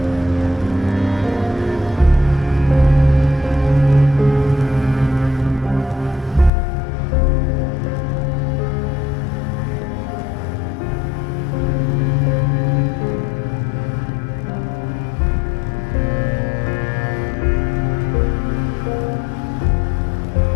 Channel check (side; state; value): right; drops out; at 6.5 s